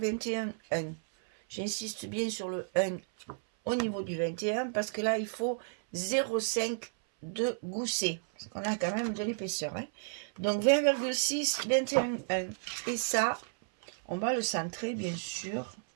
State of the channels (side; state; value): left; silent; 56 dB below the other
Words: J'insiste bien sur le 1 au niveau du 21 parce que là, il faut 0,5 de gousset. Parce qu'on a quand même de l'épaisseur. Hein. Donc 20,6, 21,1. Et ça, on va le centrer bien sûr